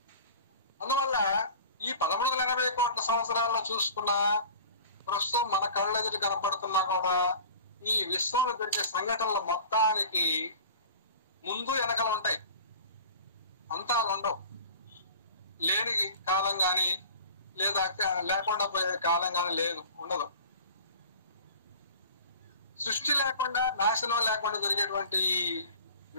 అందువల్ల ఈ 1380 కోట్ల సంవత్సరాల్లో చూసుకున్న ప్రస్తుతం మన కళ్ళెదుటి కనపడుతున్నా కూడా ఈ విశ్వంలో జరిగే సంఘటనల మొత్తానికి ముందు వెనకలు ఉంటాయి, అంతాలు ఉండవు. లేని కాలం కానీ లేదా లేకుండా పోయే కాలం కానీ ఉండదు. సృష్టి లేకుండా, నాశనం లేకుండా జరిగేటువంటి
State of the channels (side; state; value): both; inverted; correlation -0.40